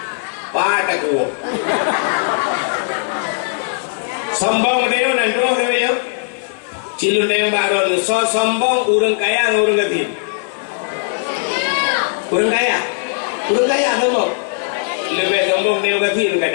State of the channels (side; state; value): right; silent; 63 dB below the other